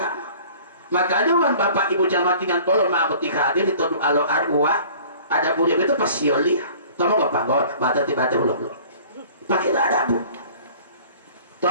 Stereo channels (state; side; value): inverted; both; correlation -0.48